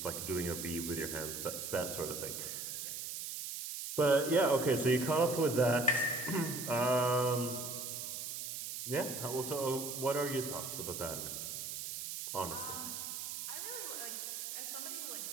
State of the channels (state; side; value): noise; right; hiss, 5 dB below the sound